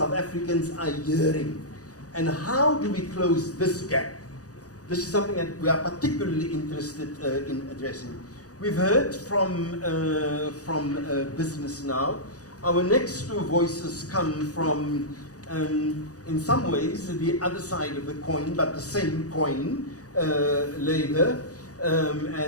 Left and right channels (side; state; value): right; late; 0.67 ms